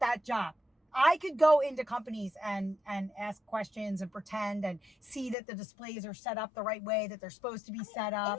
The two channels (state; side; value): drops out; right; at 5.4 s